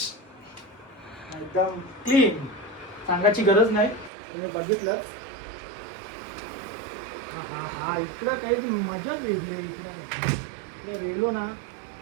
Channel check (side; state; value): left; drops out; at 4.1 s